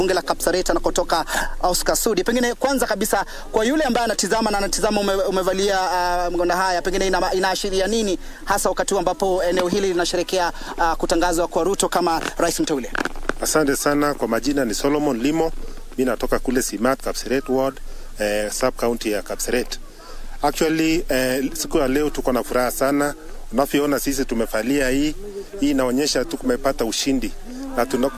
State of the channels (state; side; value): identical; both; correlation 1.00